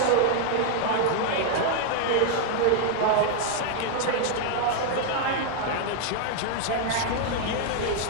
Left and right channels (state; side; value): different; both; correlation 0.00